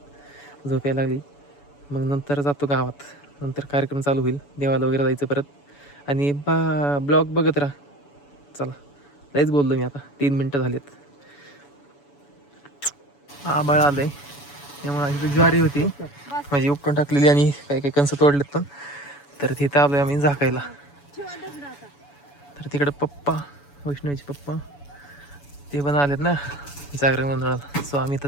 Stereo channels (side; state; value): right; late; 7.0 ms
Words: झोप यायला लागली. मग नंतर जातो गावात, नंतर कार्यक्रम चालू होईल, देवाला वगैरे जायचं परत. आणि ब्लॉग बघत राहा. चला लयच बोललो मी आता, 3 मिनटं झालेत. आंबाळ आलंय त्यामुळे इथं ज्वारी होती म्हणजे उपटून टाकलेली आणि काही काही कणसं तोडलेत पण. तर तिथं आलोय आम्ही झाकायला. तर तिकडे पप्पा, वैष्णवीचे पप्पा ते पण आलेत ना जागरण गोंधळाला. सो आम्ही